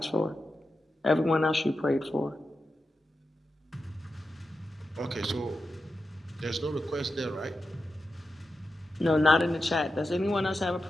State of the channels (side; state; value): both; normal; correlation 0.90